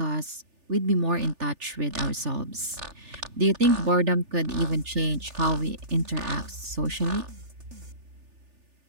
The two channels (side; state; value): left; late; 3.4 ms